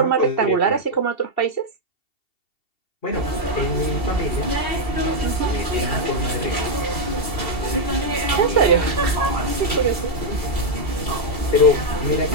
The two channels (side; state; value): right; late; 2.7 ms